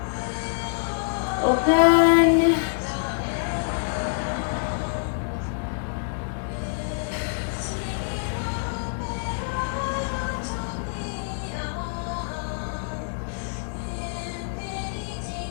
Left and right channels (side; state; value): right; silent; digital silence